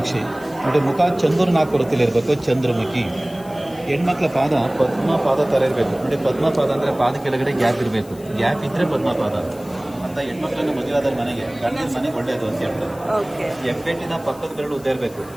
ನೋಡಿ, ಮುಖ ಚಂದ್ರನಾಕೃತಿಲಿ ಇರಬೇಕು, ಚಂದ್ರಮುಖಿ. ಹೆಣ್ಮಕ್ಳ ಪಾದ ಪದ್ಮಪಾದ ಥರ ಇರಬೇಕು. ನೋಡಿ, ಪದ್ಮಪಾದ ಅಂದರೆ ಪಾದ ಕೆಳಗಡೆ ಗ್ಯಾಪ್ ಇರಬೇಕು. ಗ್ಯಾಪ್ ಇದ್ದರೆ ಪದ್ಮಪಾದ ಅಂತ. ಹೆಣ್ಮಕ್ಳನ್ನ ಮದುವೆಯಾದ ಮನೆಗೆ ಗಂಡಿನ ಮನೆಗೆ ಒಳ್ಳೆಯದು ಅಂತ ಹೇಳ್ತಾರೆ. ಹೆಬ್ಬೆಟ್ಟಿನ ಪಕ್ಕದ ಬೆರಳು ಉದ್ದ ಇರಬೇಕು.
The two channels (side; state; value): left; noise; hiss, 22 dB below the sound